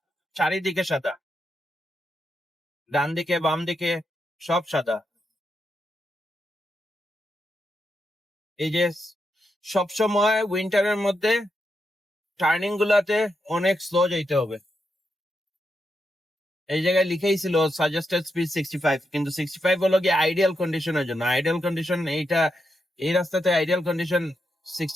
চারিদিকে সাদা, ডান দিকে বাম দিকে সব সাদা। এই যে সবসময় উইন্টারের মধ্যে টার্নিং গুলাতে অনেক স্লো যাইতে হবে। এই জায়গায় লিখেই ছিল সাজেস্টেড স্পিড 65, কিন্তু 65 হলো গিয়ে আইডিয়াল কন্ডিশনের জন্য। আইডিয়াল কন্ডিশন এইটা, এই রাস্তাতে আইডিয়াল কন্ডিশন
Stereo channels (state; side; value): normal; both; correlation 0.84